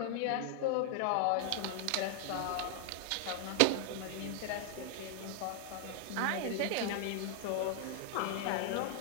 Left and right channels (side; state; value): both; different; correlation 0.00